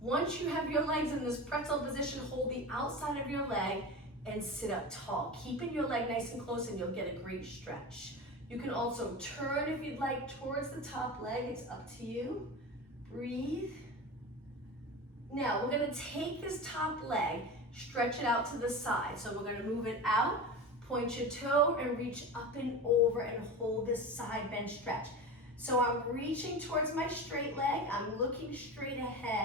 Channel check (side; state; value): both; normal; correlation 0.28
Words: you have your legs in this pretzel position, hold the outside of your leg and sit up tall. Keeping your leg nice and close and you'll get a great stretch. You can also turn if you'd like towards the top leg. It's up to you. Breathe. Now we're gonna take this top leg, stretch it out to the side. So we're gonna move it out, point your toe and reach up and over and hold this side bend stretch. So I'm reaching towards my straight leg. I'm looking straight